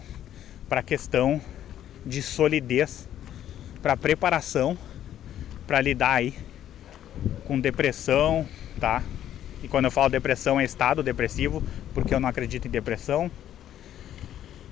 para a questão de solidez, para preparação para lidar aí com depressão, tá? E quando eu falo depressão é estado depressivo, porque eu não acredito em depressão.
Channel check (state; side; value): quieter; right; 11.2 dB